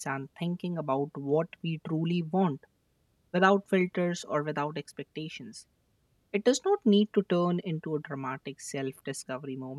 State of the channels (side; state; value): both; identical; correlation 1.00